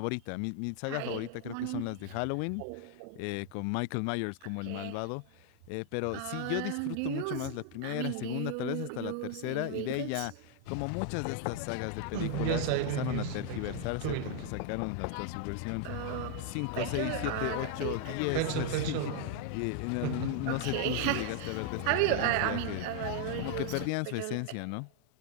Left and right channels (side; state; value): both; different; correlation 0.00